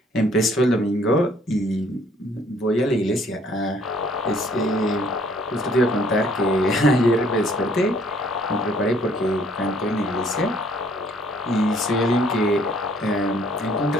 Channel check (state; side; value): normal; both; correlation 0.61